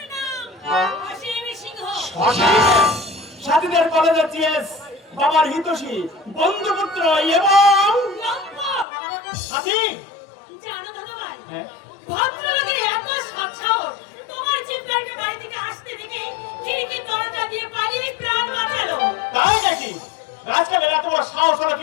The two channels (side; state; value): right; drops out; at 8.8 s